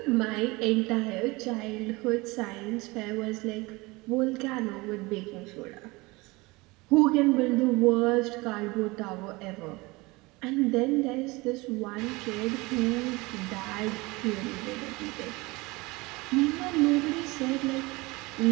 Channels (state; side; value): quieter; left; 23.3 dB